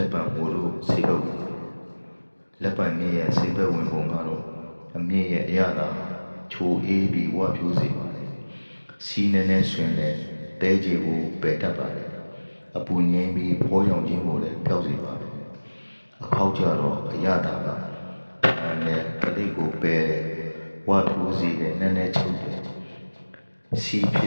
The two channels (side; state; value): both; inverted; correlation -1.00